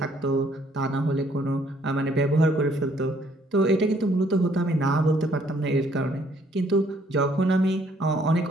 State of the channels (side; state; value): both; normal; correlation 0.65